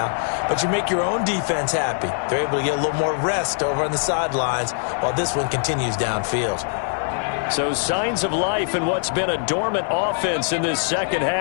but you make your own defense happy. They're able to get a little more rest over on the sidelines while this one continues downfield. So signs of life in what's been a dormant offense in this 2nd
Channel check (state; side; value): silent; right; digital silence